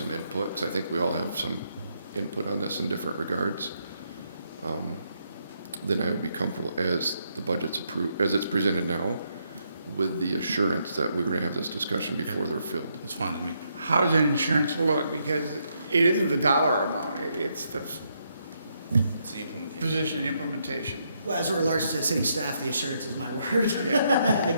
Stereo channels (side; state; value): both; inverted; correlation -0.77